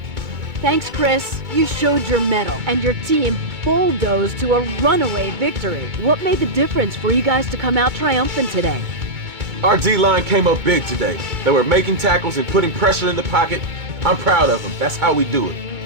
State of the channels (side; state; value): left; late; 2.2 ms